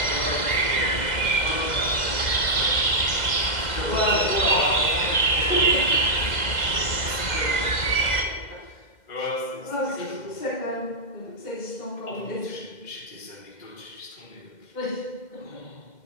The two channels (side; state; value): right; late; 2.1 ms